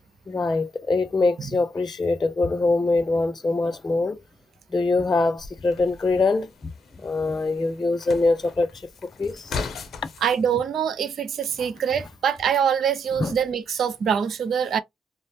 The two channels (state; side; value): normal; both; correlation 0.77